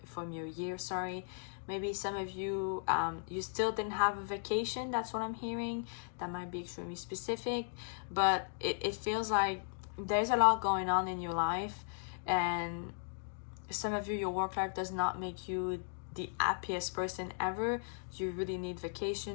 year, sorry. Maybe some of you you still didn't have a vacation, that's what I'm hearing. That might be extremely specific, but it feels like there's a lot going on in your life, and some of you, your work life does not make you the happiest person ever. You really need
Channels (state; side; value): silent; right; digital silence